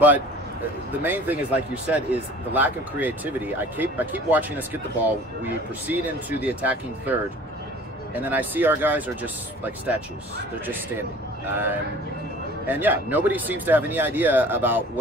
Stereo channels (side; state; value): both; normal; correlation 0.47